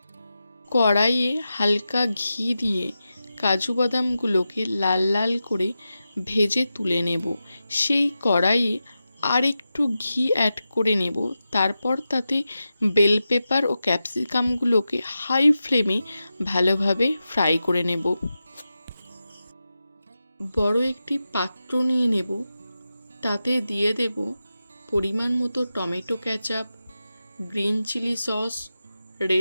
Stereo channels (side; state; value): both; inverted; correlation -0.91